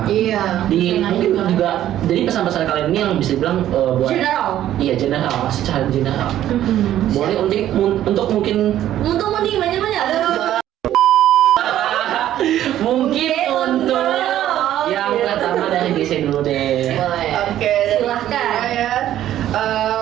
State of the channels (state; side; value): quieter; left; 12.3 dB